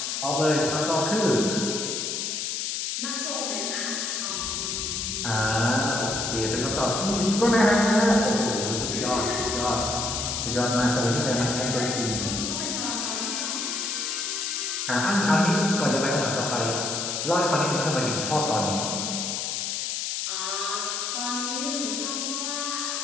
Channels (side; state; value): left; noise; hiss, 2 dB below the sound